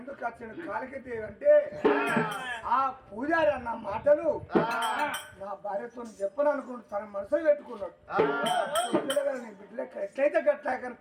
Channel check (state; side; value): identical; both; correlation 1.00